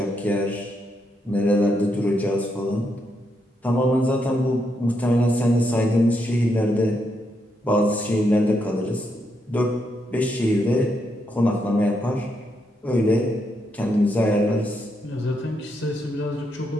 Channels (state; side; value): normal; both; correlation 0.80